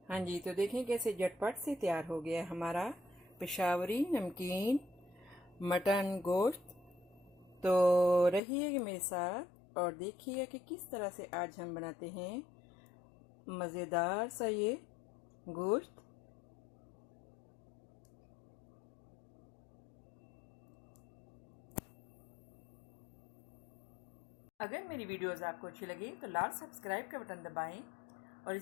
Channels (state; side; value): drops out; right; at 8.4 s